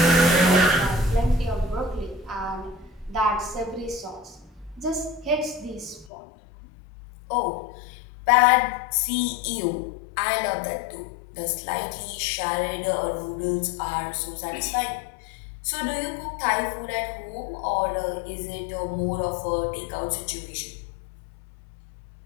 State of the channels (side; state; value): right; drops out; at 6.1 s